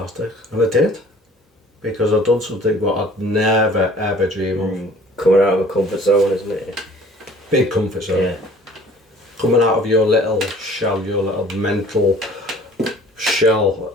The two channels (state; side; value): normal; both; correlation 0.51